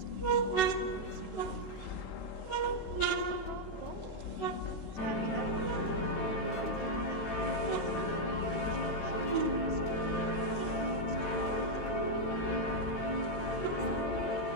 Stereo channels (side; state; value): right; late; 13 ms